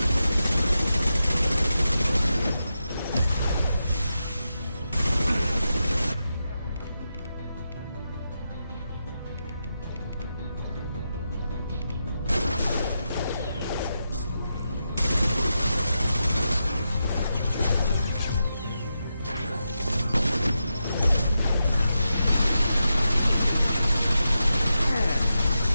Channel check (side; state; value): both; inverted; correlation -0.88